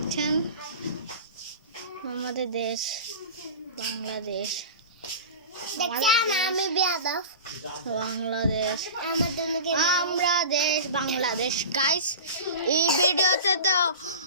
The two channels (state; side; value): inverted; both; correlation -0.34